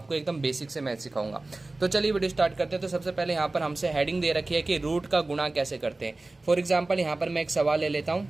एकदम बेसिक से मैथ सिखाऊंगा। तो चलिए वीडियो स्टार्ट करते हैं। तो सबसे पहले यहाँ पर हमसे हेडिंग दे रखी है कि रूट का गुणा कैसे करते हैं। फॉर एग्जाम्पल यहाँ पर मैं एक सवाल ले लेता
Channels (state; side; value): quieter; left; 3.1 dB